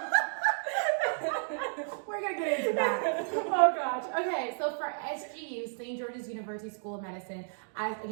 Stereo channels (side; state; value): left; silent; digital silence